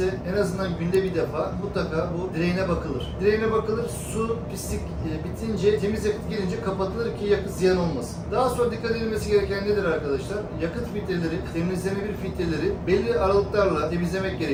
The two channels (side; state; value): both; identical; correlation 1.00